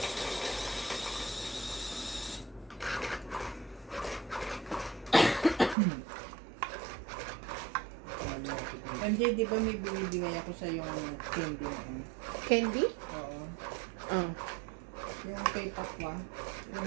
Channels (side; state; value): left; drops out; at 5.8 s